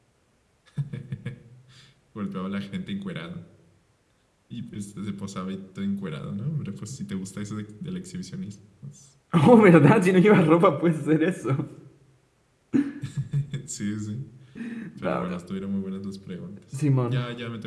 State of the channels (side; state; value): both; identical; correlation 1.00